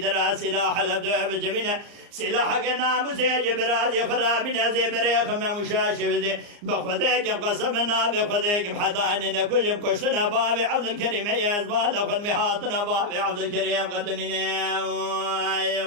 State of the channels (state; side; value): late; left; 34 ms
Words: سلاح لبدو بجمينا سلاح قنا مسيج برازي خرابنا زي بريخ ما مشاشي بخذيك قصبنا بخذيك بحضاننا كلهم كشتنا بابي عبد الكريم يزبال خذ مهاتنا بابي عبد الكريم قتلنا